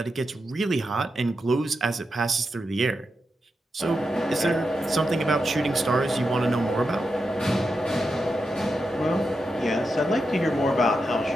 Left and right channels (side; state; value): both; normal; correlation 0.87